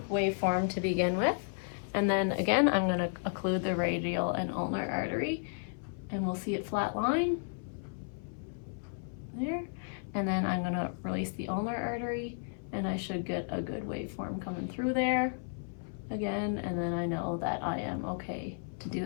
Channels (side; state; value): right; silent; 56 dB below the other